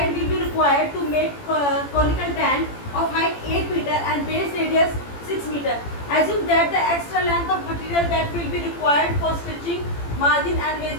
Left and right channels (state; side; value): late; right; 18 ms